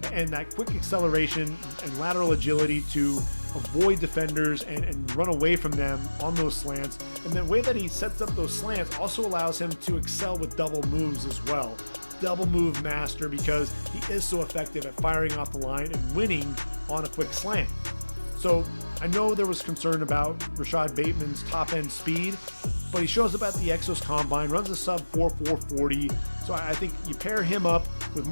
And that quick acceleration and lateral agility to avoid defenders and run away from them on those slants. And the way that he sets up those slants also allows him to excel with double moves as well. Double move master, because he is so effective at firing off the line and winning on a quick slant. So I know there was concern about Rashad Bateman's top end speed, but he shows up at the Exos Combine, runs a sub 4.40. So I think you pair him up with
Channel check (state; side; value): inverted; both; correlation -1.00